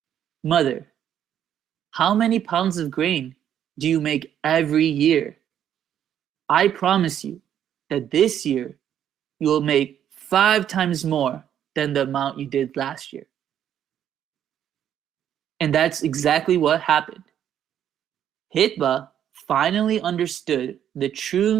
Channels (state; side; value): quieter; left; 9.9 dB